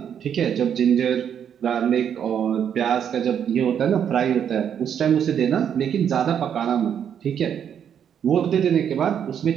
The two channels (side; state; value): left; quieter; 8.6 dB